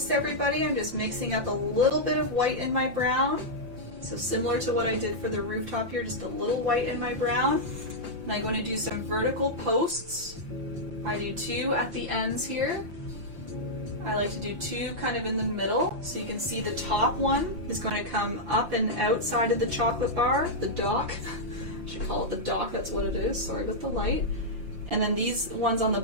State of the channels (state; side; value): late; left; 5.8 ms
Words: everybody, I'm just mixing up a little bit of white in my brown. So similar to what I did for the rooftop here, just a little white in my brown. And I'm going to do some vertical posts. I do 2 at the ends here. I like to do 2 kind of in the middle. So you can see the top one is going to come up and outside of the chocolate bar, the dock. I should call it the dock, that's what it is. Sorry about the light. And then these ones on the